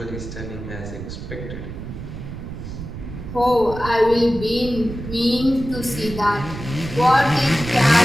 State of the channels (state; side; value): noise; right; rumble, 9 dB below the sound